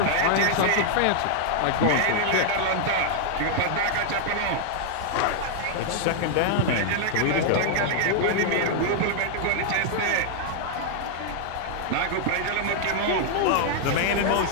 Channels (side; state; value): both; different; correlation -0.01